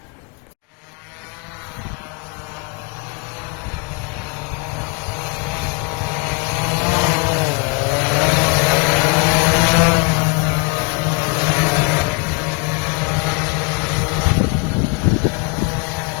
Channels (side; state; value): right; quieter; 29.9 dB